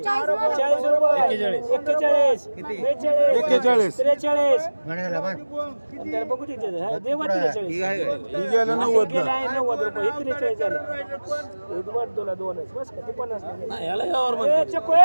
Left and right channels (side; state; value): both; inverted; correlation -1.00